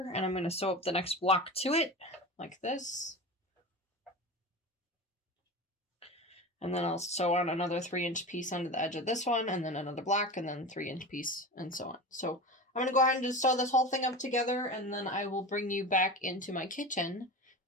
and I'm going to sew up the next block to it like this. And then I'll sew on another 3-inch piece under the edge of this one, and then another block, and then 3-inch piece, and so on. So I'm going to go ahead and just sew this whole thing up together, and then I will bring you back into my kitchen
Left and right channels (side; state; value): both; normal; correlation 0.29